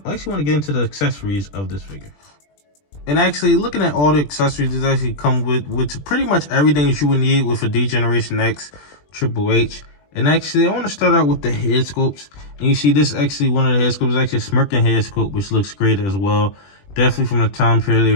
I actually want to get into the accessories of this figure. And actually, looking at all the accessories, it actually come with pretty much everything that you would need with a D-Generation X Triple H. And actually, I want to start out with the head sculpts. And you see this actually, one of the head sculpts is actually a smirking head sculpt, which looks great as well. Definitely from the time period, they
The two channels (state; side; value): late; right; 20 ms